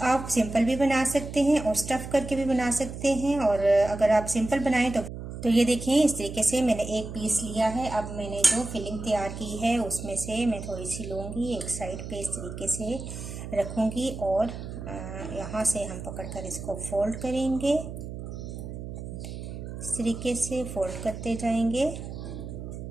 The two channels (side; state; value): right; noise; hum, 9 dB below the sound